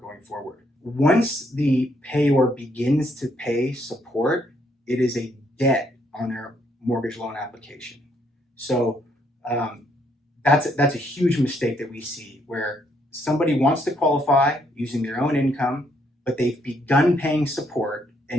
going forward. Once the payor begins to pay support, it is a debt on their mortgage loan application. So that's a huge mistake that we see, where somebody wants to qualify using their own income, but they've begun paying support,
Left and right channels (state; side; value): normal; both; correlation 0.71